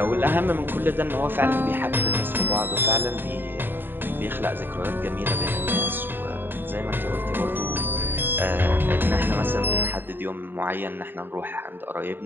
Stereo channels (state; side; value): late; left; 0.096 ms